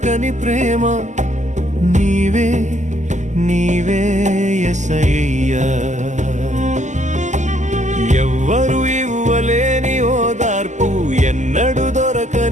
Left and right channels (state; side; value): late; left; 0.34 ms